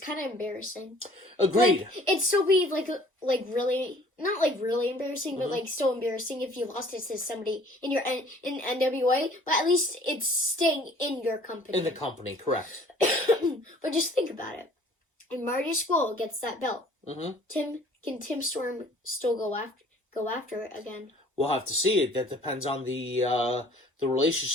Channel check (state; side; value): normal; both; correlation 0.54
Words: of embarrassing. Agreed. Like, it'd still be like really not like really embarrassing, but like still embarrassing if you lost it to somebody in NWA. But at least it's staying in your company. In the company, correct. But just think about it. And Marty Scurll gets that belt. Can Tim Storm still go after it again? We'll have to see it. That depends on the